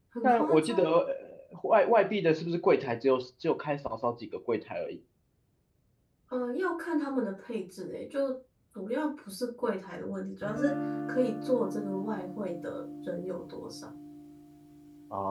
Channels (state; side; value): identical; both; correlation 1.00